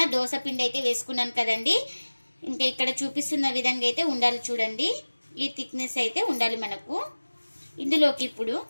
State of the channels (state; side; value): inverted; both; correlation -1.00